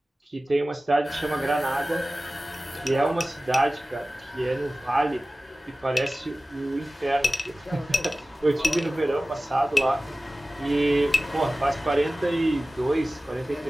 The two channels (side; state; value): both; normal; correlation 0.97